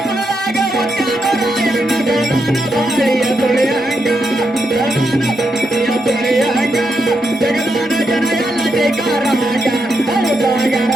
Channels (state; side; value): normal; both; correlation 0.83